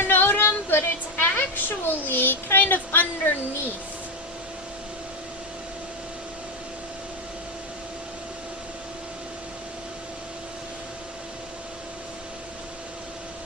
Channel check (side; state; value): both; normal; correlation 0.09